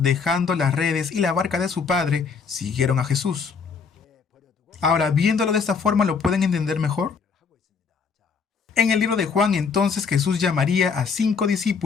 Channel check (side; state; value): right; quieter; 5.6 dB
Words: dejando las redes y la barca de su padre, siguieron a Jesús. Ahora, viéndolo de esta forma, ¿lo pueden entender mejor? En el libro de Juan, entonces, Jesús llamaría a 5